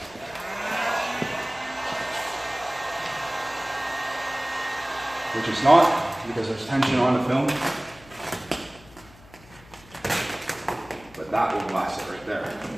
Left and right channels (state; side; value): noise; left; hum, 23 dB below the sound